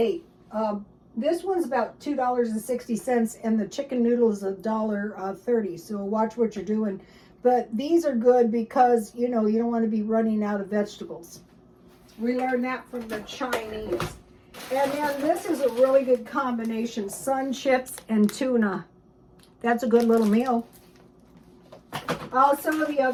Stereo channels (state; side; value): identical; both; correlation 1.00